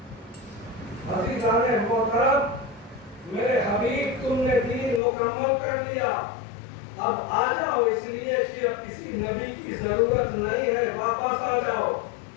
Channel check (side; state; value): right; drops out; at 5.0 s